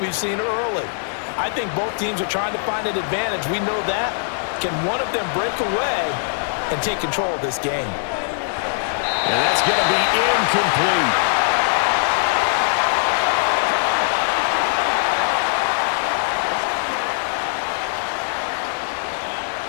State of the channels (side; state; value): right; silent; 65 dB below the other